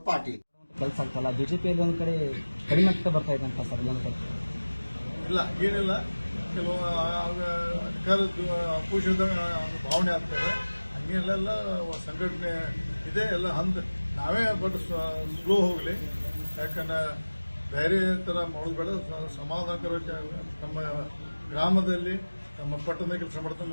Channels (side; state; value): both; inverted; correlation -1.00